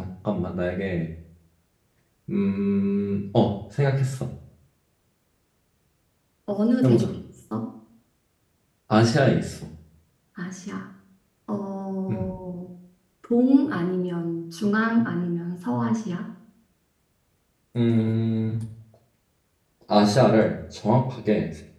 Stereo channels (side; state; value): both; identical; correlation 1.00